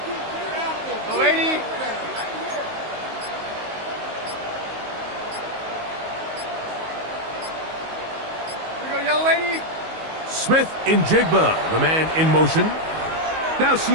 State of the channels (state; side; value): late; left; 19 ms